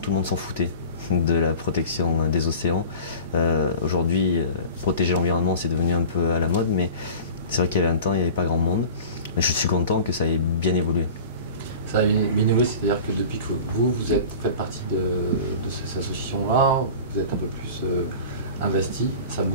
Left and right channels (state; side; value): inverted; both; correlation -0.38